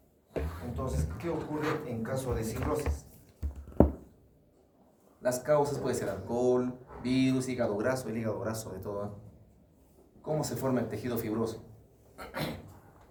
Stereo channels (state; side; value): identical; both; correlation 1.00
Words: Entonces, ¿qué ocurre en caso de cirrosis? Las causas pueden ser alcohol, virus, hígado graso, el hígado graso de todo. ¿Cómo se forma el tejido fibroso?